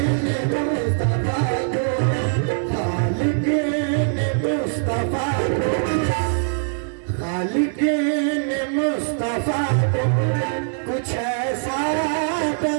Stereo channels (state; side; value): silent; left; digital silence